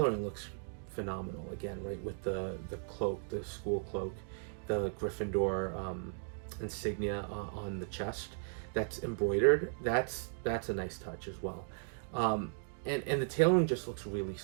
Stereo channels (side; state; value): left; silent; digital silence